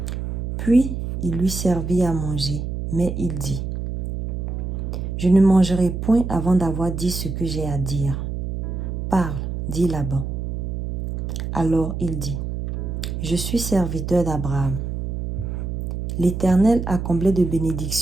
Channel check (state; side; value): noise; right; hum, 4 dB below the sound